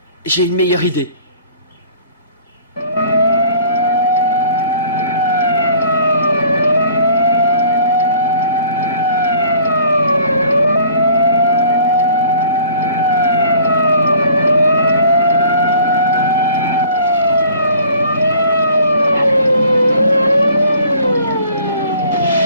J'ai une meilleure idée.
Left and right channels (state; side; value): inverted; both; correlation -0.52